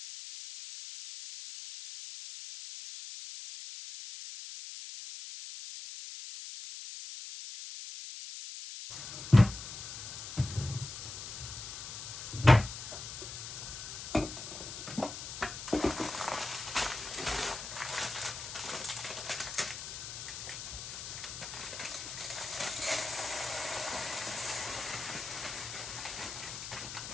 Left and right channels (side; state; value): left; noise; hiss, 8 dB below the sound